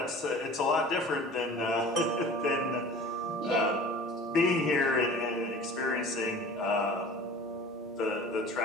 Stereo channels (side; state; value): both; normal; correlation 0.42